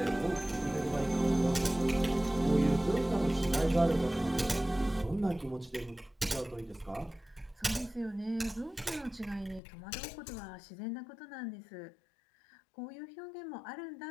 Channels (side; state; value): right; drops out; at 9.6 s